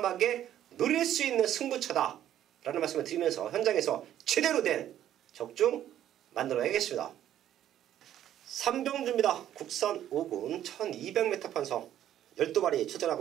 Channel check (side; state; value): left; quieter; 11.5 dB